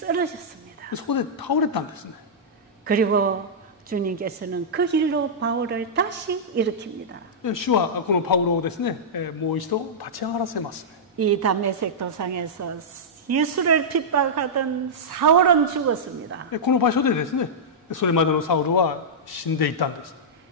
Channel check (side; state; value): both; normal; correlation -0.11